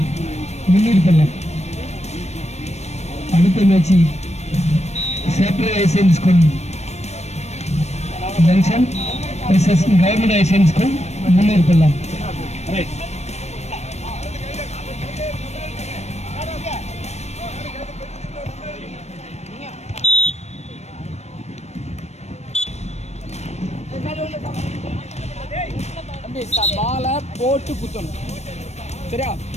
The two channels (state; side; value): late; right; 0.32 ms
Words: Munirpallam. அடுத்த match Separate High School Junction versus Government High School, Munirpallam. Right. பாலை போட்டு குத்தணும். சரியா?